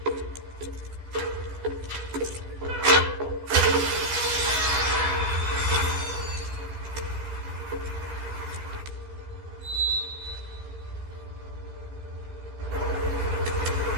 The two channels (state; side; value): late; left; 14 ms